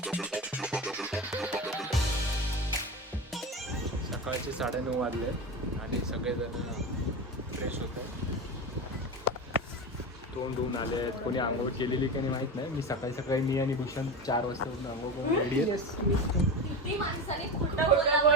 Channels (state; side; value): normal; both; correlation 0.23